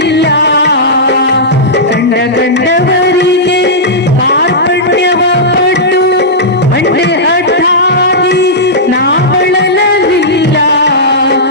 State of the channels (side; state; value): both; normal; correlation -0.13